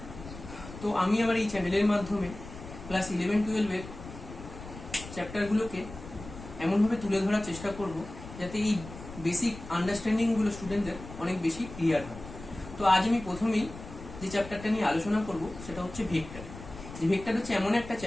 তো আমি আমার এই চ্যানেলের মাধ্যমে ক্লাস 11-12 চ্যাপ্টারগুলোকে এমনভাবে তুলে ধরার চেষ্টা করব যাতে এই বেসিক আন্ডারস্ট্যান্ডিংগুলো স্টুডেন্টদের অনেক বেশি ক্লিয়ার হয়। তো আজ আমি প্রথমেই যে চ্যাপ্টারটা নিয়ে আলোচনা করব সেটা হচ্ছে ভেক্টর। যে ভেক্টর হচ্ছে এমন একটা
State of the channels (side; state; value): left; noise; rumble, 14 dB below the sound